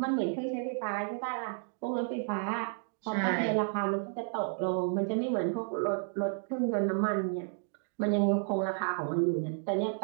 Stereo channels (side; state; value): left; silent; 56 dB below the other